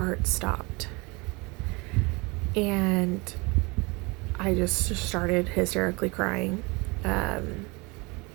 stopped. And I just started hysterically crying.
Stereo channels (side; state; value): left; quieter; 26.8 dB